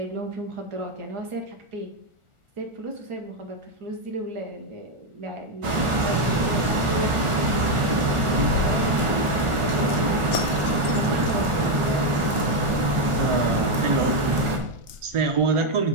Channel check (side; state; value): left; late; 1.4 ms